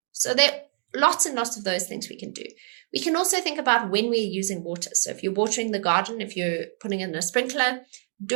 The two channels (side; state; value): left; silent; digital silence